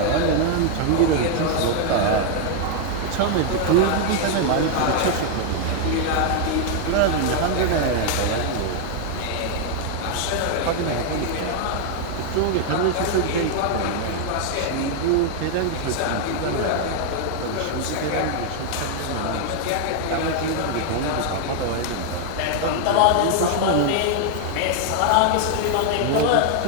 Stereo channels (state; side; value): different; both; correlation 0.00